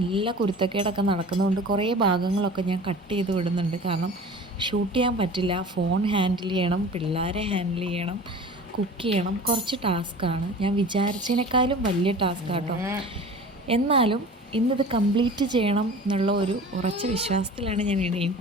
കുരുത്തക്കേടൊക്കെ നടക്കുന്നതുകൊണ്ട് കുറേ ഭാഗങ്ങളൊക്കെ ഞാൻ കട്ട് ചെയ്ത് വിടുന്നുണ്ട്. കാരണം ഷൂട്ട് ചെയ്യാൻ പറ്റില്ല. ഫോൺ ഹാൻഡിൽ ചെയ്യണം, പിള്ളേരെ ഹാൻഡിൽ ചെയ്യണം, കുക്ക് ചെയ്യണം. കുറച്ച് ടാസ്ക്കാണ്. ഞാൻ വിചാരിച്ചതിനേക്കാളും വലിയ ടാസ്ക്കാട്ടോ. എന്നാലും ഇന്നിത് കംപ്ലീറ്റ് ചെയ്യണം എന്നുള്ള ഒരു ഉറച്ച വിശ്വാസത്തിലാണ് ഞാൻ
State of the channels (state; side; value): normal; both; correlation 0.39